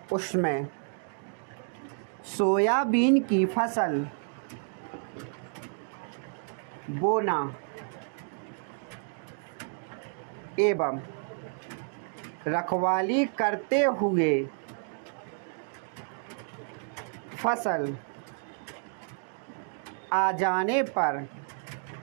उसमें सोयाबीन की फसल बोना एवं रखवाली करते हुए फसल आ जाने पर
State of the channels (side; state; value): left; silent; 57 dB below the other